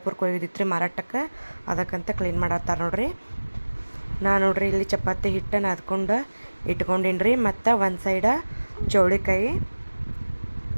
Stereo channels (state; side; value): inverted; both; correlation -1.00